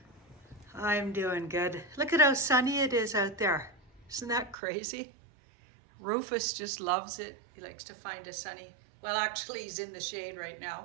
I'm doing good. Look at how sunny it is out there. Isn't that crazy? Rufus just loves it. He likes to find a sunny, well actually he's in the shade right now.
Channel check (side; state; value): left; drops out; at 4.5 s